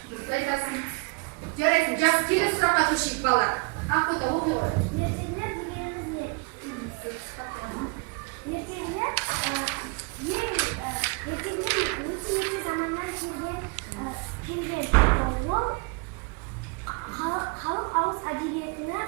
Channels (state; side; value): quieter; left; 31.2 dB